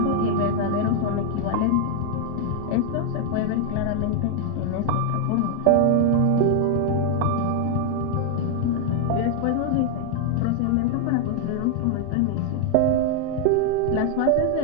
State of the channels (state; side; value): different; both; correlation 0.00